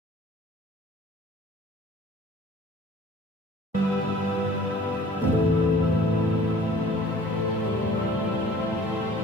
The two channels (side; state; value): both; normal; correlation 0.50